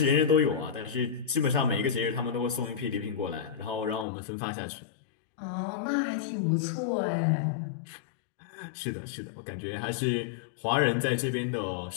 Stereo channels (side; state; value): right; drops out; at 4.0 s